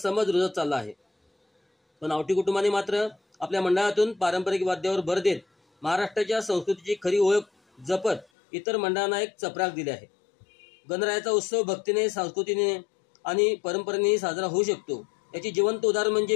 रुजत चालला आहे। पण आवटी कुटुंबाने मात्र आपल्या मंडळातून पारंपरिक वाद्यावर भर देत महाराष्ट्राच्या संस्कृतीची खरी ओळख जपत इतर मंडळांना एक चपराक दिली आहे। गणरायाचा उत्सव भक्तीने, संस्कृतीने आणि परंपरेने साजरा होऊ शकतो याची जिवंत उदाहरण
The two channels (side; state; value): right; drops out; at 8.2 s